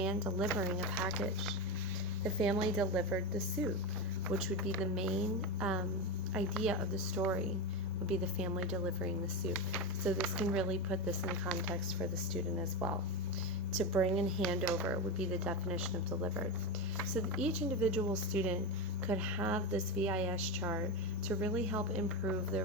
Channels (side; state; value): both; normal; correlation 0.15